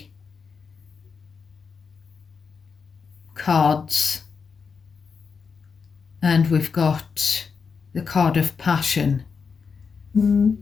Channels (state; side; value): quieter; right; 5.6 dB